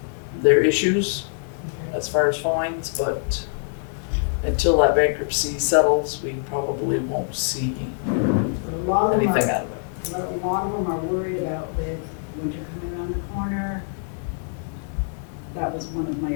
their issues as far as fines, but until that bankruptcy settles, we probably won't see But a lot of them anything are, out of it. a lot of them are worried about with winter coming around the corner. That was one of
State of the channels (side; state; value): right; silent; digital silence